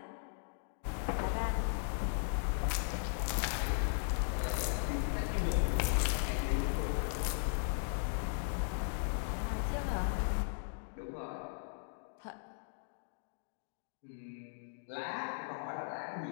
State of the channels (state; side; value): silent; right; digital silence